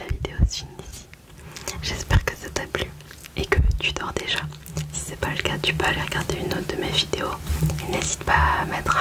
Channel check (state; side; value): identical; both; correlation 1.00